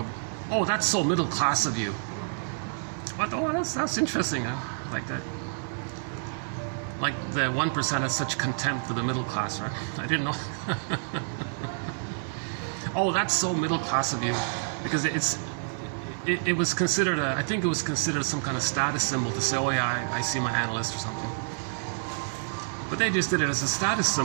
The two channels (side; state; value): left; silent; 59 dB below the other